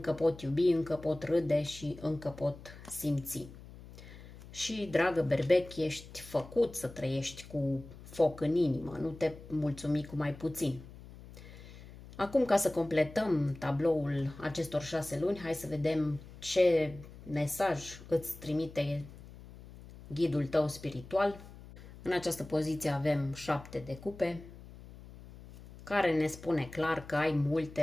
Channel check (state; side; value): noise; left; hum, 17 dB below the sound